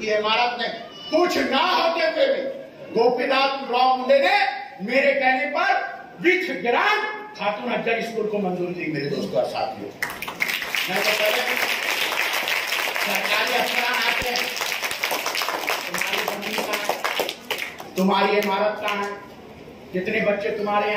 की इमारत नहीं, कुछ ना होते हुए भी गोपीनाथ राव मुंडे ने मेरे कहने पर with grant Khatoon Afzal school को मंजूरी दी। मेरे दोस्तों और साथियों, मैं तो पहले सरकारी अफसरान आते हैं, तुम्हारी जमीन कहाँ है, तुम्हारी इमारत कहाँ है, जितने बच्चे तुम्हारे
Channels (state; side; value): identical; both; correlation 1.00